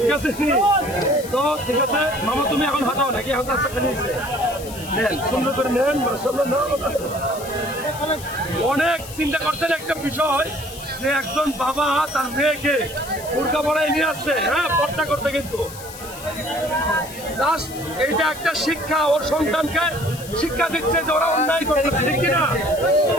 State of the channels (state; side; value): noise; left; hiss, 14 dB below the sound